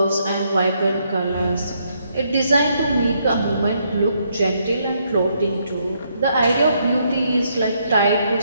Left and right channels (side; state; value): both; inverted; correlation -0.74